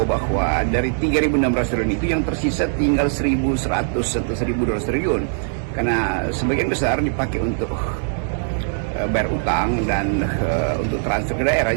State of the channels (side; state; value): left; silent; digital silence